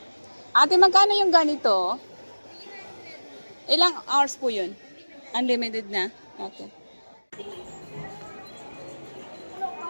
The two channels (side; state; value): both; inverted; correlation -1.00